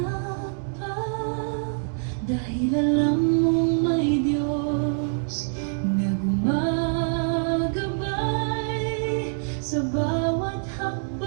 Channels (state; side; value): silent; left; digital silence